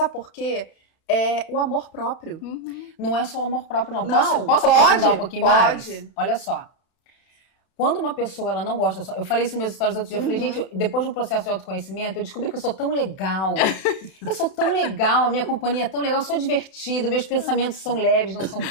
por quê? É o amor próprio. Não é só o amor próprio, não. Não, posso aprofundar um pouquinho mais? Pode. Olha só. Quando uma pessoa ela não gosta... Eu falei isso nos meus stories outro dia. Eu falei, gente, depois do processo de autoconhecimento, eu descobri que eu sou tão legal. Eu sou tão legal, a minha companhia é tão legal, eu sou divertida, meus pensamentos são leves, não são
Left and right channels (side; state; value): right; late; 32 ms